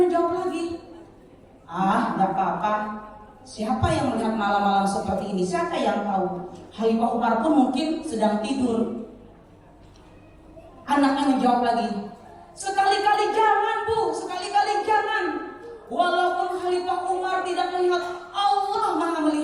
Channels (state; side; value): identical; both; correlation 1.00